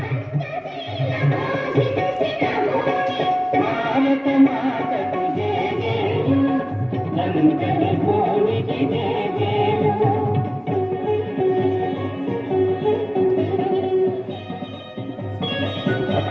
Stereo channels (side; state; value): both; identical; correlation 1.00